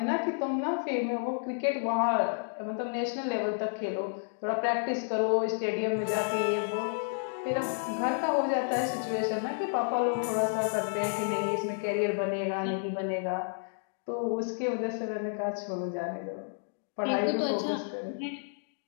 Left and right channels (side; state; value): right; silent; digital silence